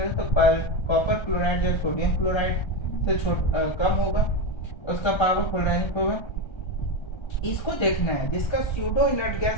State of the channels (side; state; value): right; late; 1.3 ms